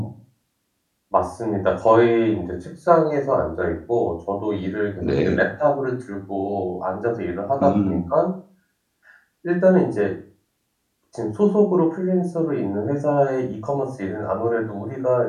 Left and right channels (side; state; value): both; identical; correlation 1.00